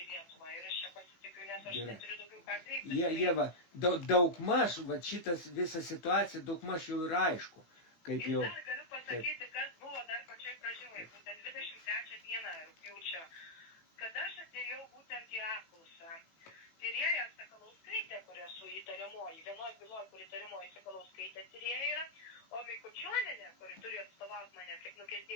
į Lietuvą. Ir aš čia pasitikiu, nes aš neturiu daugiau ką kreiptis. Ieva, daugmaž, va šitas visa situacija daugmaž jau yra aišku. Kaip jau... Ir dar galiu pasakyti, kas buvo dar pačioj pradžioj, būtent 23 dieną rugpjūčio, kad aš atėjau būtent į apklausą. Tyrėja Sakalauskaitė, kur esu įtariamoji, vienoj byloj, kur įtariamoji Sakalauskaitė tyrėja yra, o Mikučionienė, kuri turi atstovauti mane kaip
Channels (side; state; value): right; late; 18 ms